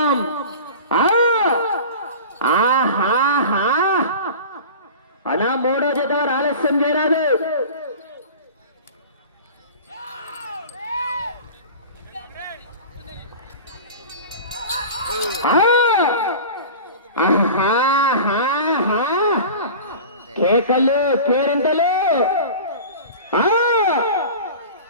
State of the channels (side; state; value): both; inverted; correlation -0.36